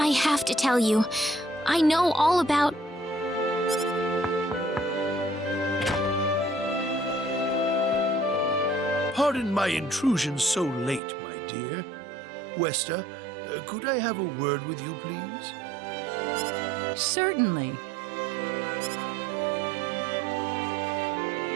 have to tell you, I know all about... Pardon my intrusion so late, my dear. Westa, could I have a word with you, please? Certainly.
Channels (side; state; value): left; drops out; at 11.0 s